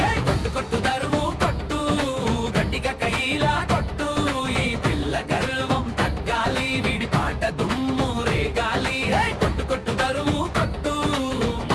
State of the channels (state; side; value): identical; both; correlation 1.00